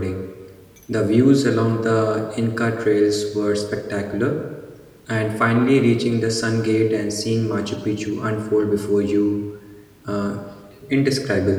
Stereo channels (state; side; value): identical; both; correlation 1.00